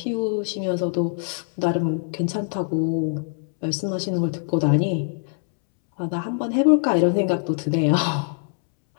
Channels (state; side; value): silent; right; 63 dB below the other